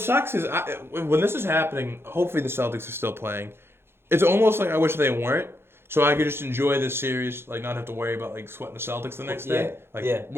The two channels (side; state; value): left; late; 0.11 ms